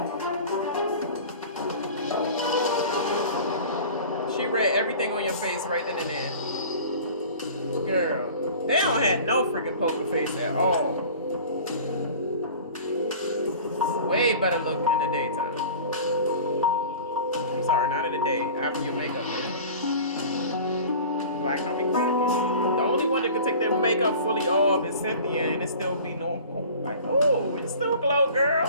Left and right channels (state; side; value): inverted; both; correlation -0.41